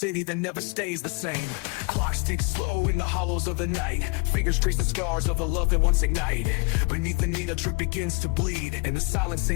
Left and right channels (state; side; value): quieter; right; 31.1 dB